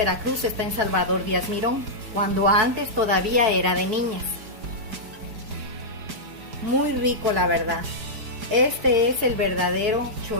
está en Salvador Díaz Mirón, cuando antes todavía era de niñas. Muy rico, la verdad. Este es el verdadero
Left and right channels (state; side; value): late; left; 4.5 ms